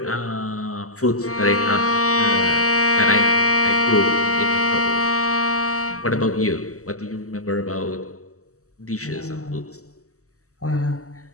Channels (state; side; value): late; right; 0.65 ms